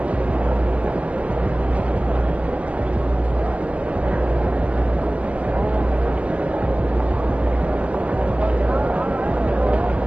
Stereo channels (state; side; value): late; left; 0.065 ms